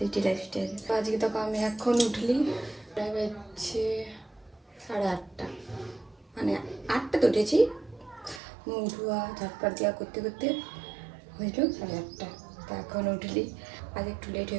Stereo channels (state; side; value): drops out; left; at 8.4 s